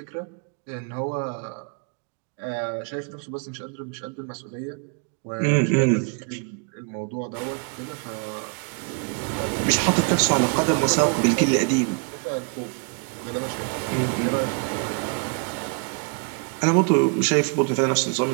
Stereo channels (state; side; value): quieter; left; 39.2 dB